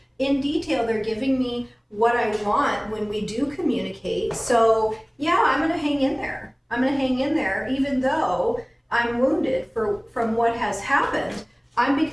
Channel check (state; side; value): identical; both; correlation 1.00